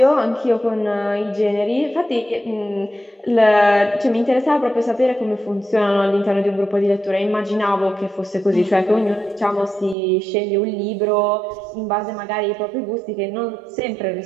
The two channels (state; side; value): drops out; left; at 10.0 s